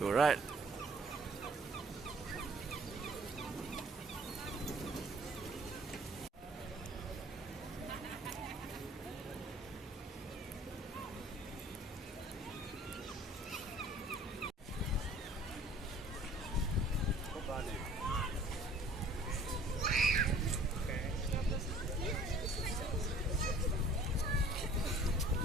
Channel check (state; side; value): normal; both; correlation 0.52